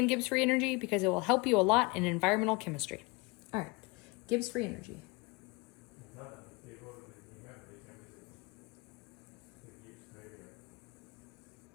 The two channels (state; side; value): quieter; right; 26.5 dB